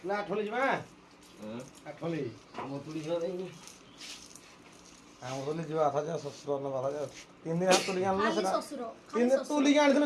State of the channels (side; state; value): both; identical; correlation 1.00